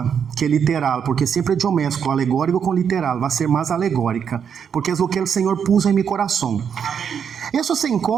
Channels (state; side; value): quieter; left; 7.5 dB